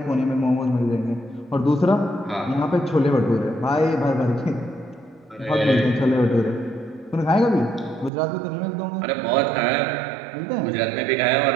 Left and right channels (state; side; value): drops out; left; at 8.1 s